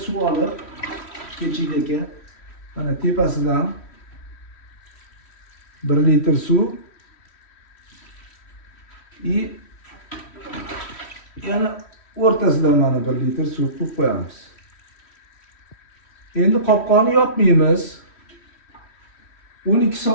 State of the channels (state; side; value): late; right; 3.1 ms